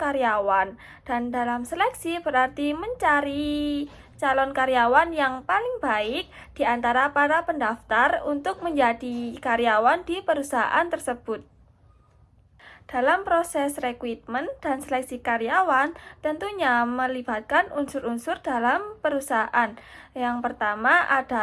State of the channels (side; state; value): both; identical; correlation 1.00